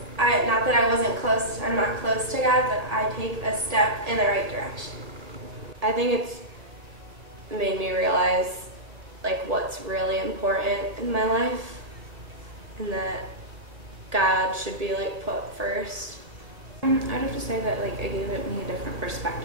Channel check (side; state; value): left; late; 1.7 ms